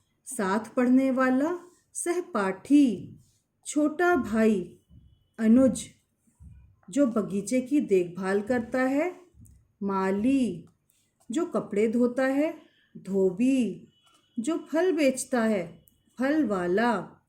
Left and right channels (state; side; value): identical; both; correlation 1.00